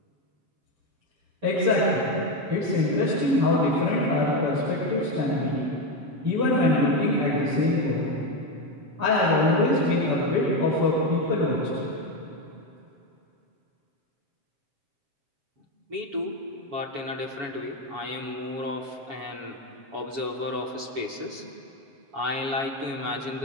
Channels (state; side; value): late; left; 7.2 ms